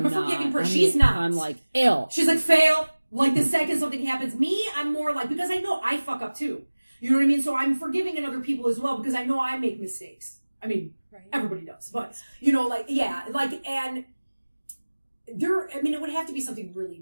a forgiving person. She's not. I'm like, ill. She's like, fail. Like, the second something happens. Me, I'm more like, because I know I fuck up too. You know what I mean? So I'm forgiving in other people as well because I know I make mistakes. I mean, everybody does. But, and there, I mean, it would have to be something really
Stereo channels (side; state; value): both; inverted; correlation -1.00